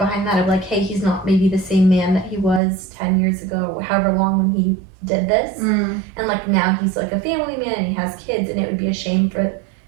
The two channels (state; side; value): drops out; left; at 2.6 s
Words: that of like, hey, he's not maybe the same man that he was 10 years ago or however long when he did this. And like now he's like a family man and he has kids, and it would be a shame for